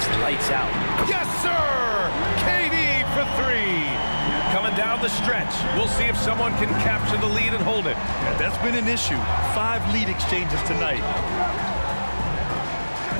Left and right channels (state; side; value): inverted; both; correlation -1.00